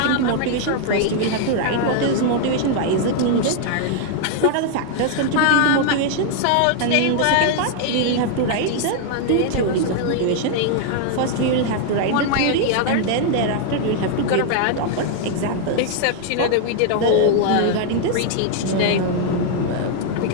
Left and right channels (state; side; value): different; both; correlation 0.00